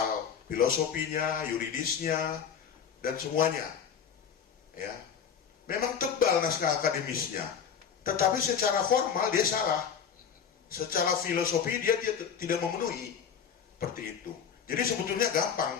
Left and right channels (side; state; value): right; quieter; 7.4 dB